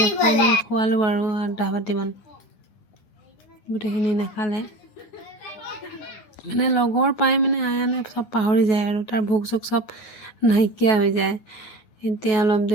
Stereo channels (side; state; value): right; late; 9.3 ms